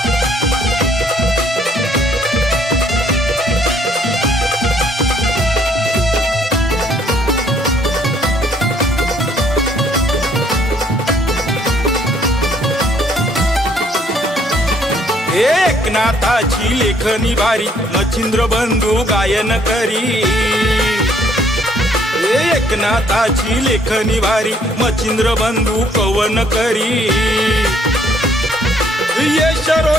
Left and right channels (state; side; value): normal; both; correlation 0.64